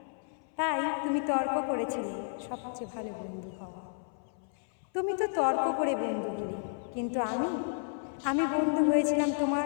তাই তুমি তর্ক করেছিলে সবচেয়ে ভালো বন্ধু হওয়া। তুমি তো তর্ক করে বন্ধু হলে, কিন্তু আমি বন্ধু হয়েছিলাম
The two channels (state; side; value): silent; right; 57 dB below the other